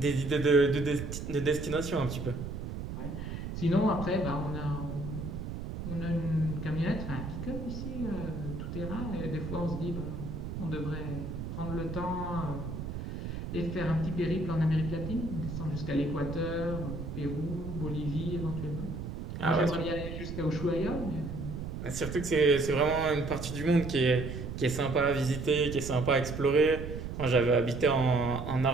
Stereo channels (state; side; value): noise; right; rumble, 6 dB below the sound